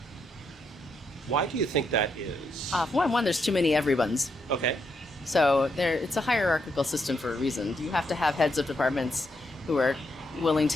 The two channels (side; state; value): both; normal; correlation 0.79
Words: Why do you think that is? One, there's too many everyones. Okay. So it's a hierarchical system for a reason. You have to have heads of departments who are willing